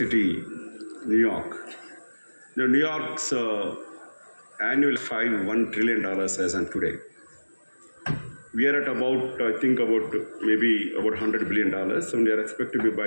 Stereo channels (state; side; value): inverted; both; correlation -1.00